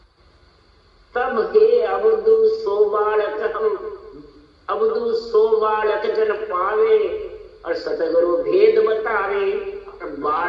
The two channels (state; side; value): identical; both; correlation 1.00